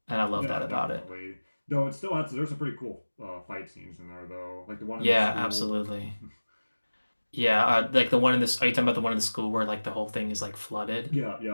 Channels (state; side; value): inverted; both; correlation -1.00